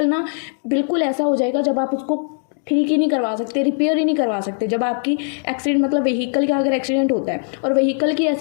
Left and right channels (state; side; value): silent; right; 66 dB below the other